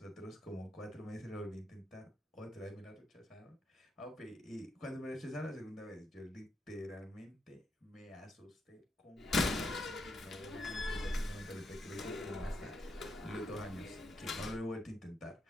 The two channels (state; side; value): normal; both; correlation 0.80